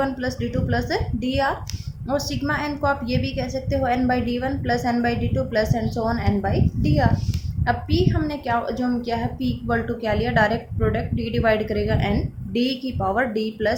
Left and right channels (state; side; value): identical; both; correlation 1.00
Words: plus d2 plus dr, और सिग्मा n को आप ये भी कह सकते हो n by d1 plus n by d2 plus and so on n by dr। अब p हमने क्या जो हम क्या है, p इक्वल टू क्या लिया, डायरेक्ट प्रोडक्ट d डिवाइड करेगा n, d की power d